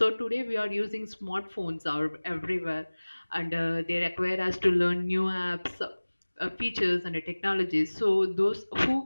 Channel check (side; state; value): both; inverted; correlation -1.00